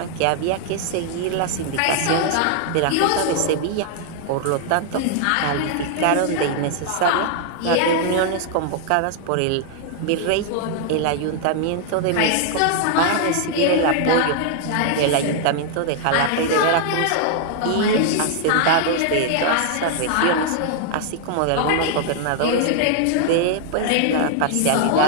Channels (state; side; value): different; both; correlation 0.00